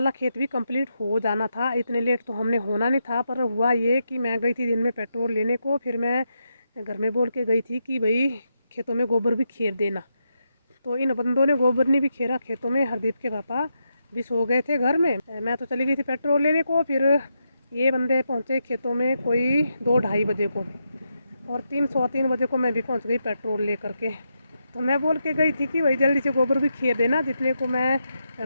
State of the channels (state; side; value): inverted; both; correlation -0.84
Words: खेत भी कंप्लीट हो जाना था। इतने लेट तो हमने होना नहीं था, पर हुआ ये कि मैं गई थी दिन में पेट्रोल लेने को। फिर मैं घर में बोल के गई थी कि भाई खेतों में गोबर भी खेर देना। तो इन बंदों ने गोबर नहीं भी खेरा खेतों में। हरदीप के पापा भी सो गए थे घर में, मैं तो चली गई थी पेट्रोल लेने को। फिर ये बंदे पहुँचे खेतों में कोई 2-2:30 बजे को, और 3-3:15 बजे को मैं भी पहुँच गई पेट्रोल ले करके। तो मैं बोल के गई थी कि भाई जल्दी से गोबर भी खेर देना, जितने को मैं